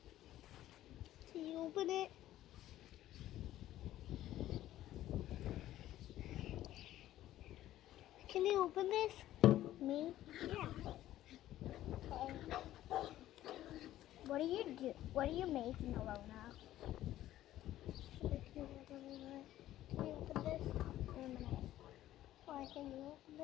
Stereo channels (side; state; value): right; quieter; 13.7 dB